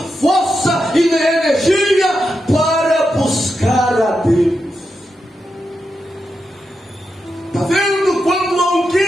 força e energia para buscar a Deus. Está vendo? Quando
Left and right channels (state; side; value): normal; both; correlation 0.87